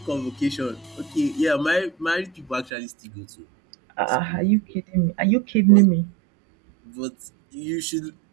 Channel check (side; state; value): left; drops out; at 2.7 s